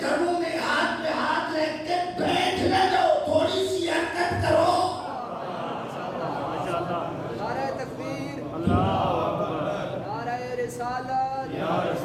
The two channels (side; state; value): both; identical; correlation 1.00